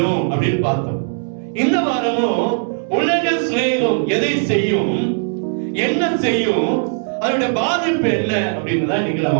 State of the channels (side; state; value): left; silent; digital silence